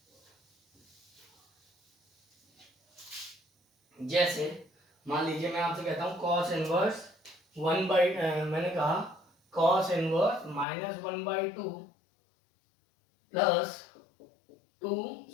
जैसे मान लीजिए मैं आपसे कहता हूं cos इनवर्स मैंने कहा cos inverse -1/2 plus 2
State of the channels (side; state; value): right; drops out; at 10.7 s